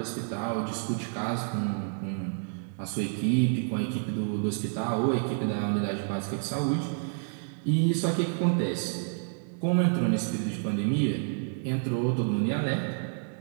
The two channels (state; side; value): silent; left; digital silence